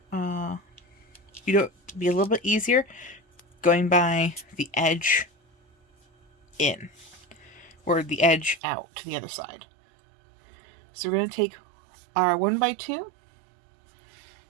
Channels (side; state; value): left; drops out; at 8.6 s